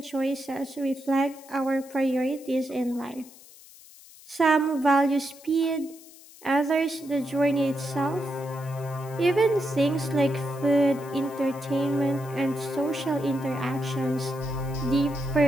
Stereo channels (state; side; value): noise; left; hiss, 21 dB below the sound